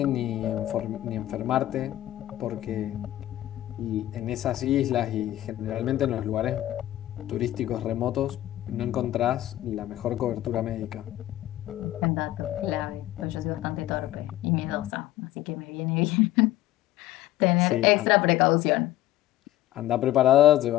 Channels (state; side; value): quieter; right; 14.5 dB